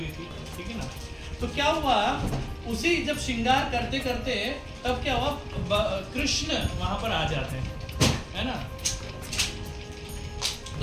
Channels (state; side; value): identical; both; correlation 1.00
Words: थी, ठीक है ना। तो क्या हुआ, उसी जब श्रृंगार करते करते तब क्या हुआ, कृष्ण वहां पर आ जाते हैं, है ना।